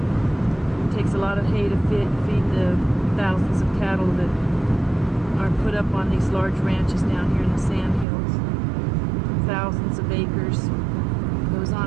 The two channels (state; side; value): drops out; left; at 8.1 s